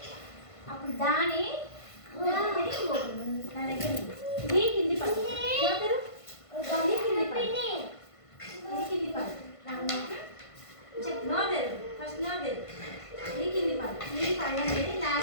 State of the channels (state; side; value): late; right; 1.5 ms